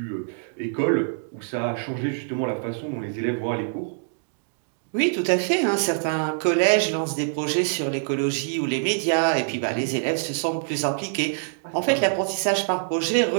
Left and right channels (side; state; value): left; silent; digital silence